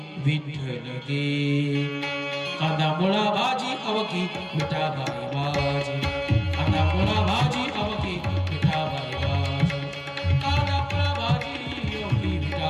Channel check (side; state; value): both; identical; correlation 1.00